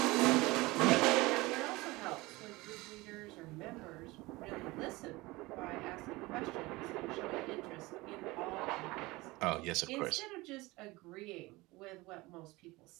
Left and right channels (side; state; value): left; quieter; 21.6 dB